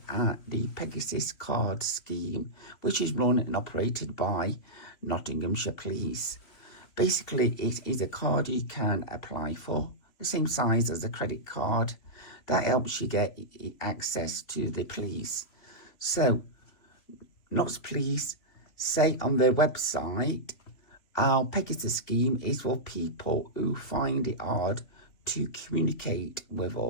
at the Pegasus Card scheme, which is run and operated by Nottinghamshire Police. Basically, it is a card you can apply for, the same size as a credit card, that helps you get access to the police. So, Notts Police say on their website, our Pegasus scheme is for people who find it hard to communicate with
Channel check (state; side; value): late; right; 3.1 ms